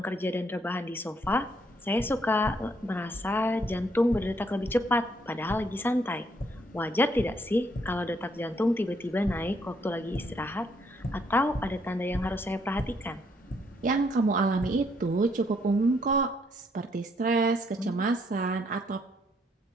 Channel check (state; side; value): normal; both; correlation 0.71